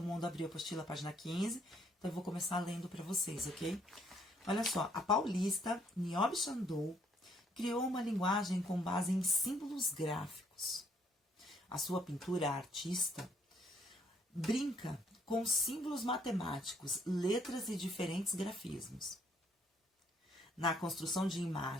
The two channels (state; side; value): normal; both; correlation 0.67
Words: mundo abriu a apostila, página 15, então eu vou começar lendo para vocês, ok? Olha só, a paulista Niobe Sandow criou uma linguagem com base em símbolos gráficos. A sua pintura artista brinca com símbolos matemáticos, letras e diferentes grafismos. Na construção de